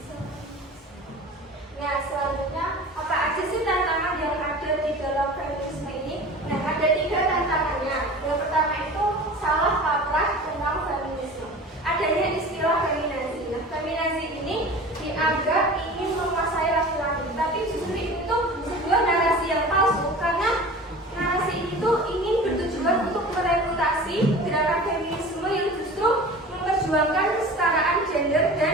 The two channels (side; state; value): both; normal; correlation 0.38